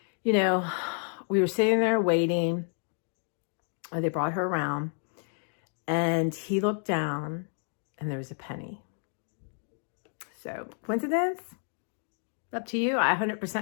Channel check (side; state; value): right; silent; 58 dB below the other